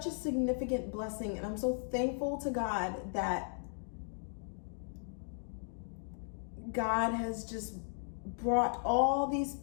a significant blessing. And I'm so thankful to God that God has just brought all these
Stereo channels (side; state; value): right; silent; digital silence